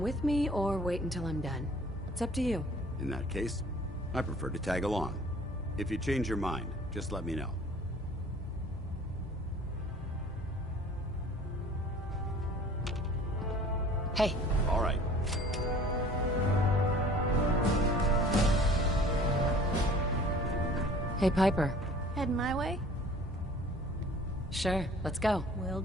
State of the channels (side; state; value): both; normal; correlation 0.49